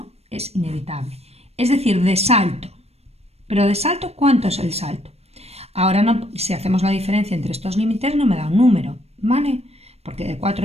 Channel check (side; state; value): left; late; 0.30 ms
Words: es inevitable. Es decir, de salto. Pero de salto, ¿cuánto es el salto? Ahora no, si hacemos la diferencia entre estos límites no me da un número, ¿vale? Porque de 4